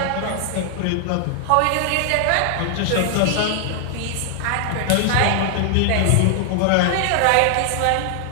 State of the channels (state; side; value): different; both; correlation 0.00